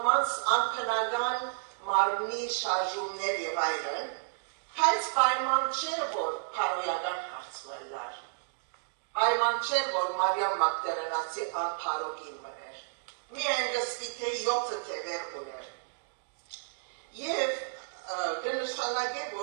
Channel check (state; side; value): silent; left; digital silence